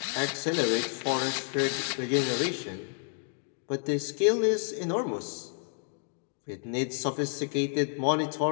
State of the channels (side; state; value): right; silent; 57 dB below the other